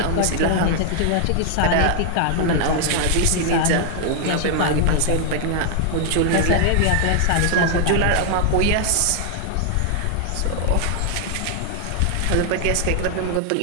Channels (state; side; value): different; both; correlation 0.00